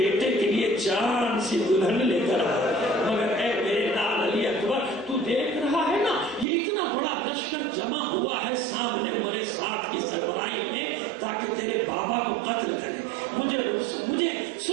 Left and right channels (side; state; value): left; drops out; at 6.5 s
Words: کے لیے چاند سی دلہن لے کر آئے. مگر اے میرے لال علی اکبر، تو دیکھ رہا ہے نا یہ اتنا بڑا لشکر جمع ہوا ہے سامنے عمر سعد کی سربراہی میں تاکہ تیرے بابا کو قتل کرے. مجھے